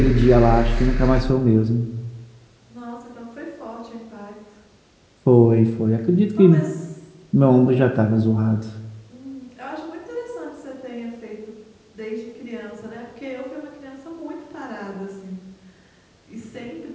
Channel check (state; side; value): identical; both; correlation 1.00